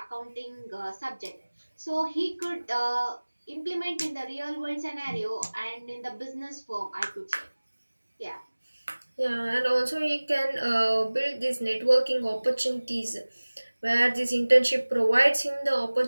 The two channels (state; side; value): inverted; both; correlation -1.00